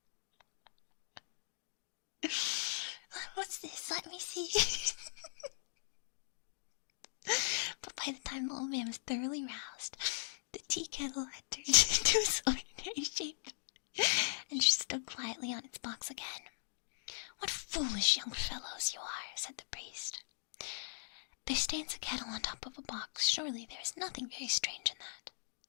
What's this? Let me see. But by the time the old man was thoroughly roused, the tea kettle had turned into its ordinary shape and stood quietly on its box again. What foolish young fellows you are, said the priest. There stands a kettle on top of a box. Surely there is nothing very strange in that.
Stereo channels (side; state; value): right; silent; digital silence